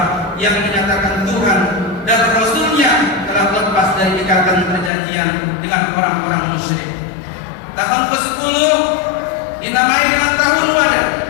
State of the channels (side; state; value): right; drops out; at 4.9 s